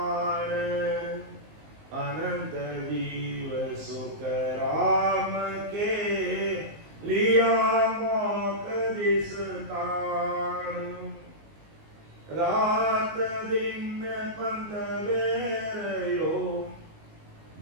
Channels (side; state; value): left; late; 19 ms